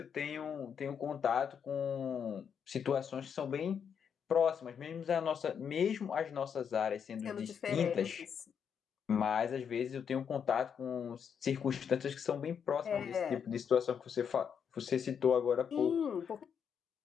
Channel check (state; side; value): quieter; right; 7.4 dB